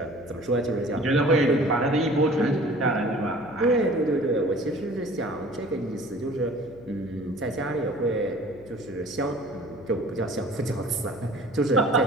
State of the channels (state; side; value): noise; left; hum, 20 dB below the sound